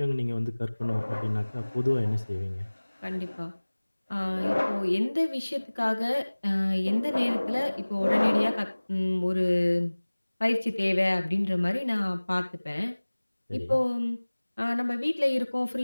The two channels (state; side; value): inverted; both; correlation -1.00